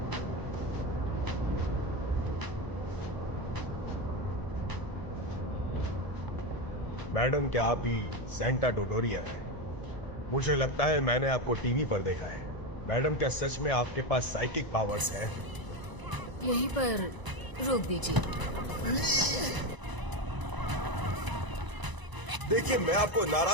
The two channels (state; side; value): late; left; 1.0 ms